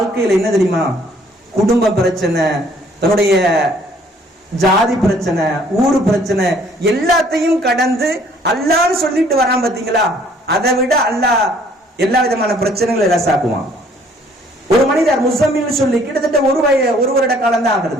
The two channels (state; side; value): normal; both; correlation 0.60